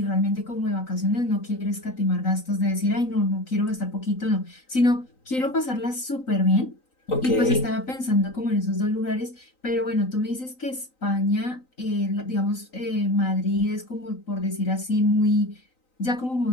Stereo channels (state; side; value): late; right; 3.9 ms